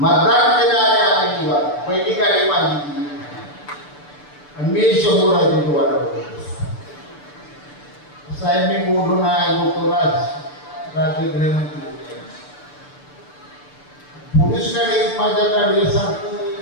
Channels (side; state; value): right; late; 6.8 ms